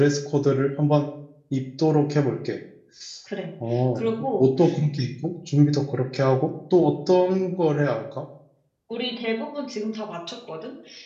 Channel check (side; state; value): both; identical; correlation 1.00